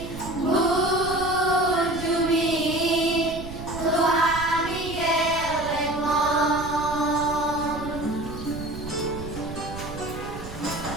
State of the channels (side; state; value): right; noise; rumble, 11 dB below the sound